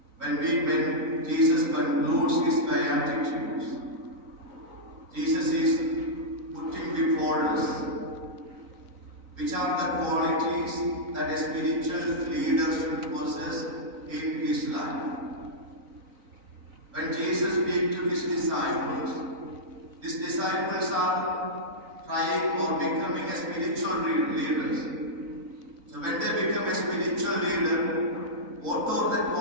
When Jesus concludes his Beatitudes, Jesus is putting before us which are the qualities that a spiritual leader should possess in his life. When Jesus speaks to his disciples are trying or becoming a spiritual leaders. So when they become a spiritual leader, what are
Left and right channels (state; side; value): late; left; 3.9 ms